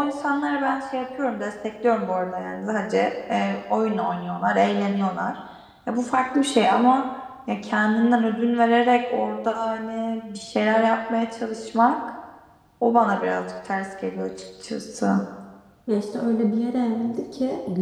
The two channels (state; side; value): identical; both; correlation 1.00